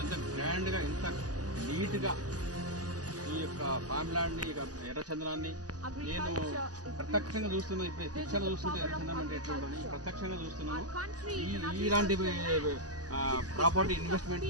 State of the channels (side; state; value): left; late; 0.67 ms